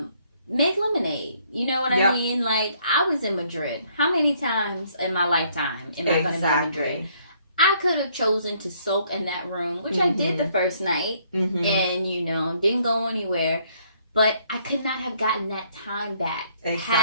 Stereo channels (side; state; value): both; inverted; correlation -0.66